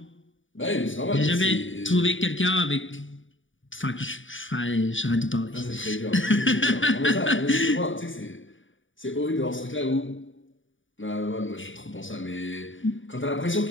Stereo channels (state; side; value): late; right; 0.57 ms